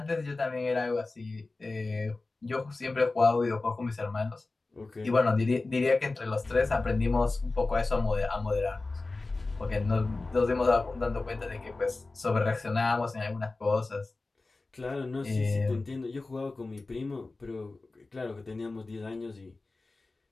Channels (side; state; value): right; quieter; 3.4 dB